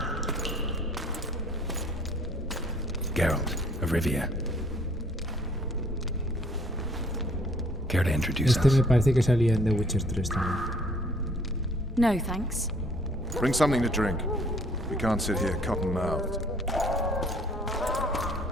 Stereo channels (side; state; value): both; normal; correlation 0.59